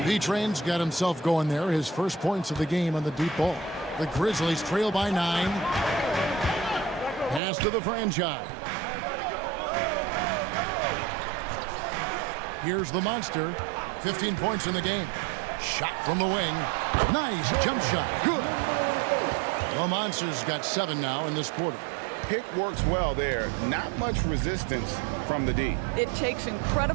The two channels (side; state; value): left; drops out; at 7.4 s